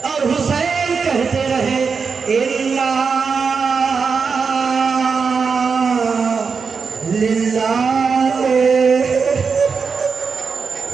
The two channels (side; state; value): left; quieter; 5.4 dB